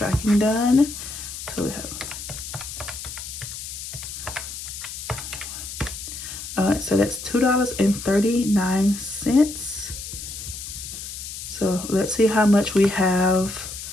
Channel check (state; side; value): noise; left; hiss, 9 dB below the sound